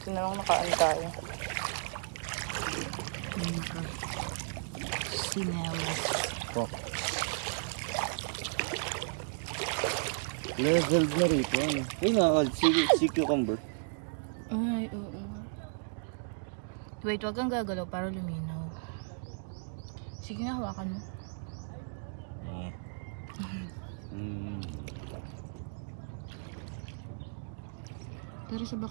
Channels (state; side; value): silent; left; digital silence